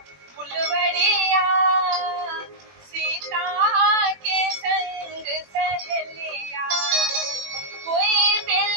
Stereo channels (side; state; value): left; late; 21 ms